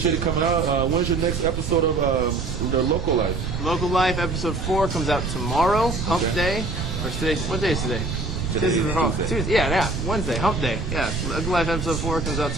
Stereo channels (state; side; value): noise; right; rumble, 3 dB below the sound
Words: it coming out. When's your next episode of the Local Life? Local Life episode 4 comes out tomorrow, Hump Day. Or today? What day is today? Tuesday. Yeah, Wednesday, Hump Day. Yeah, Local Life episode 4 comes out